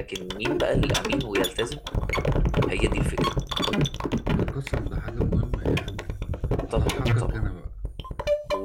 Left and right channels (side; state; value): both; identical; correlation 1.00